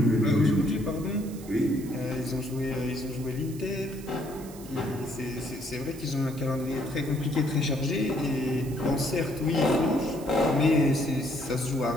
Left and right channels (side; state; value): right; noise; hiss, 18 dB below the sound